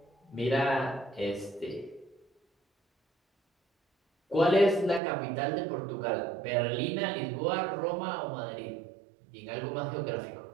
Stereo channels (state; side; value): drops out; left; at 5.0 s